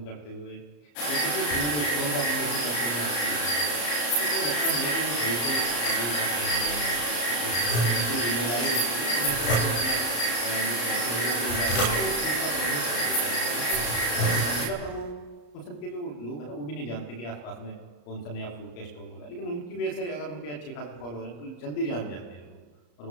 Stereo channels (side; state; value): right; late; 34 ms